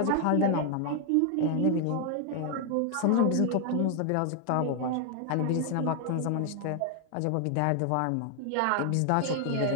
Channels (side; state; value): both; different; correlation 0.00